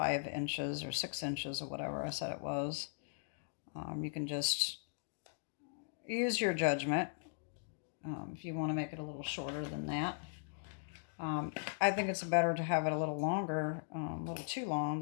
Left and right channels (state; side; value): silent; right; digital silence